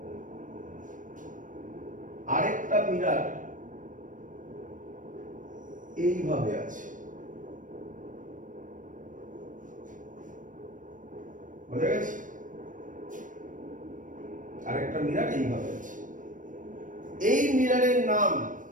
মিরর এইভাবে আছে, বোঝা গেছে? আরেকটা মিরর এইভাবে আছে। এই মিররের নাম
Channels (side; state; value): left; late; 0.38 ms